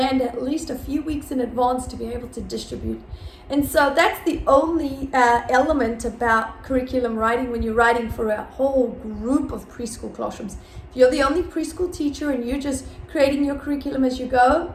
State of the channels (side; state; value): both; identical; correlation 1.00